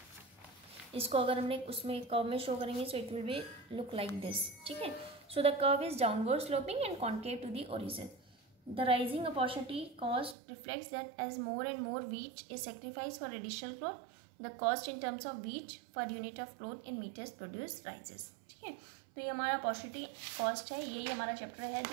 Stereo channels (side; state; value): left; drops out; at 10.4 s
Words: इसको अगर हमने उसमें कर्व में शो करेंगे so it will be look like this, ठीक है। So the curve is downward sloping and concave to the origin. The rising opportunity cost reflects that as more and more wheat is sacrificed for additional growth, the cost in terms of wheat per unit of growth in meters produced rises, ठीक है। तो ये हमारा opportunity cost है, यही हमारा chapter है